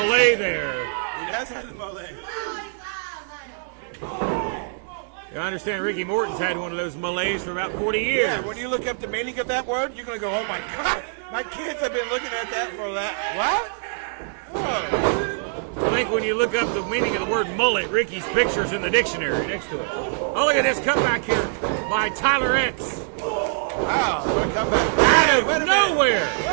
there. He does have the melee. I understand Ricky Morton's had one of those melees for about 40 years. Yeah, when you look up the meaning of that word, you're going to go, oh, my God. My kids have been looking at that for that. What? Oh. I think when you look up the meaning of the word mullet, Ricky's picture's in the dictionary next to it. Oh, look at this comeback here by Tyler X. Wow, what a comeback. Hey, wait a minute. Nowhere.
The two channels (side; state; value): left; silent; digital silence